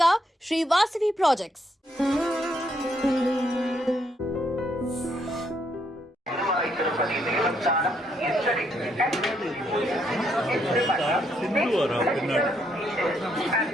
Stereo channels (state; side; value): normal; both; correlation 0.74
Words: శ్రీ వాసవి ప్రాజెక్ట్స్.